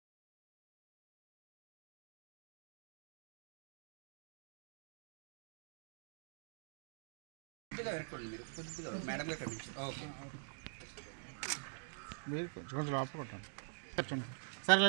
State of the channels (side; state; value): left; silent; digital silence